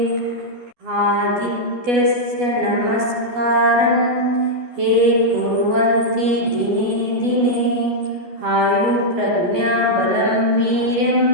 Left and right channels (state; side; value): late; left; 12 ms